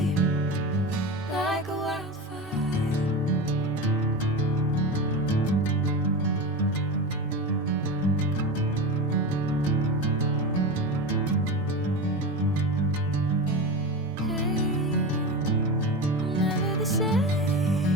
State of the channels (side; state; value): both; normal; correlation 0.24